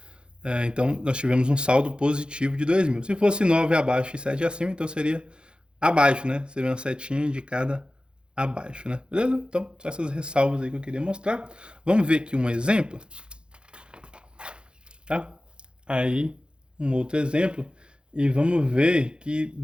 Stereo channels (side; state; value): left; late; 0.052 ms